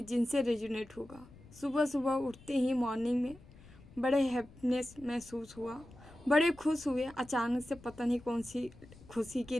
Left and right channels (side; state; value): left; noise; rumble, 21 dB below the sound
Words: जिनसे रेजोनेट होगा। सुबह सुबह उठते ही मॉर्निंग में बड़े हैप्पीनेस महसूस हुआ, बड़े खुश हुए। अचानक से पता नहीं कौन सी खुशी की